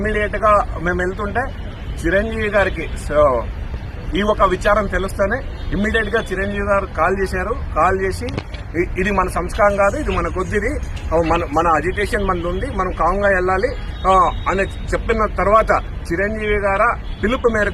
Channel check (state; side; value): identical; both; correlation 1.00